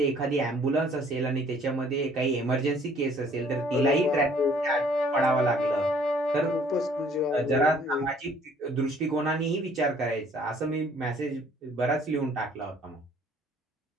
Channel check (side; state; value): both; normal; correlation 0.59